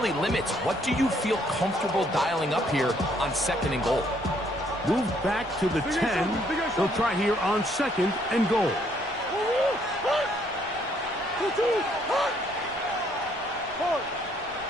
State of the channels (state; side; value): noise; left; rumble, 23 dB below the sound